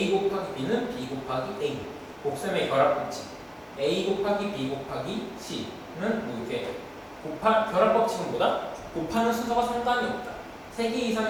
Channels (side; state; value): both; identical; correlation 1.00